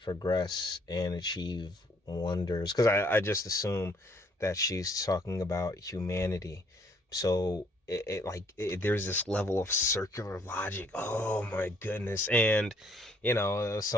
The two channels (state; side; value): normal; both; correlation 0.65